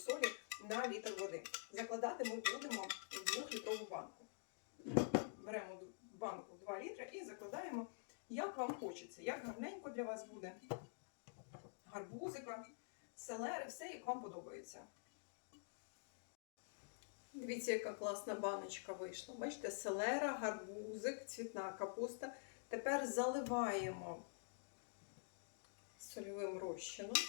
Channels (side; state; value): right; silent; digital silence